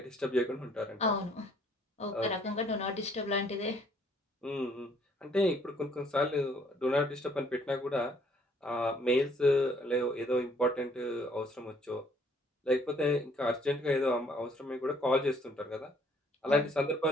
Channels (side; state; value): both; normal; correlation 0.63